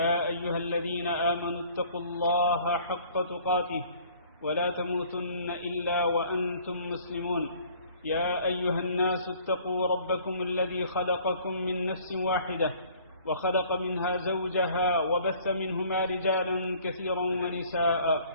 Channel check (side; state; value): both; inverted; correlation -0.54